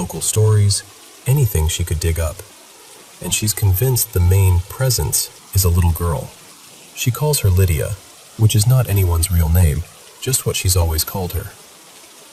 stories, anything she could dig up. And she's convinced the main presence is a little girl. She calls her Lydia, which is not anyone's real name, just what she's always called her.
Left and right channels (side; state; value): both; identical; correlation 1.00